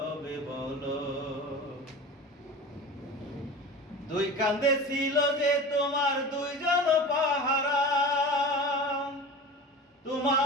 বলো। দুই কান্দে ছিল যে তোমার দুইজন পাহারা,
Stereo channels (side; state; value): both; normal; correlation 0.33